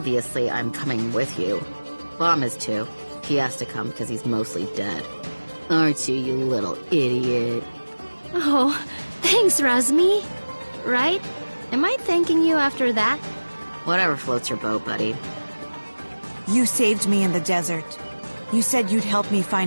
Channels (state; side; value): inverted; both; correlation -1.00